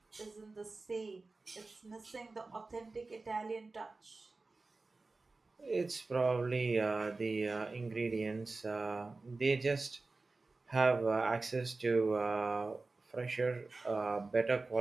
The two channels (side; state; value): left; quieter; 3.6 dB